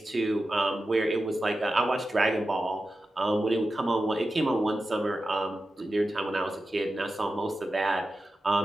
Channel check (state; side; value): normal; both; correlation 0.92